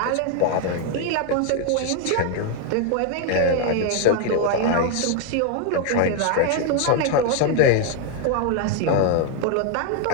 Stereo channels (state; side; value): different; both; correlation 0.00